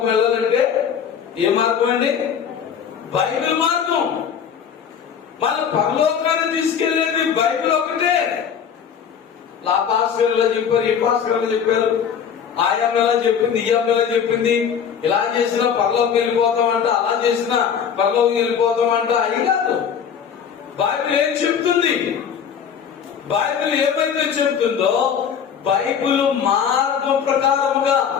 వెళ్ళాలంటే ఏ మార్గం అండి? బైబిల్ మార్గం. మన పరలోకాన్ని తీసుకెళ్లేది బైబిల్ ఒకటే. ఆ భాస్కర్లో చెప్పారు, ఈ భాస్కర్లో చెప్పారు, ఆయా ఎలా చెప్పింది, ఈ ఎలా చెప్పింది, ఇలా చేసినా పరలోకం వెళ్ళిపోతామంట, అలా చేసినా పరలోకం వెళ్ళిపోతామంట. అయి కాదు. బైబిల్ ఏం చెప్తుంది? బైబిల్ ఏమైతే చెప్తుందో బైబిల్ మార్గం ప్రకారముగా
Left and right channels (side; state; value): right; quieter; 7.6 dB